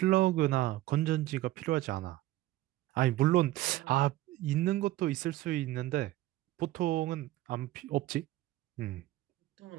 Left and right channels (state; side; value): quieter; left; 16.1 dB